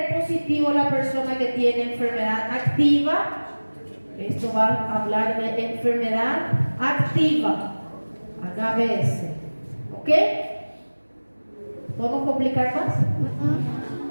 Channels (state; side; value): inverted; both; correlation -1.00